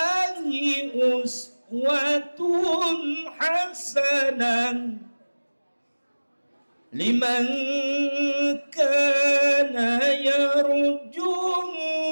أسوة حسنة لمن كان يرجو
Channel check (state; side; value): inverted; both; correlation -1.00